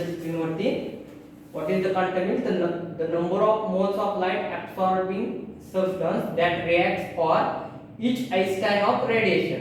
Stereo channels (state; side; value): identical; both; correlation 1.00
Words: स्क्रीनवरती. What is the quantum yield? The number of moles of light absorbing substance that reacts for each einstein of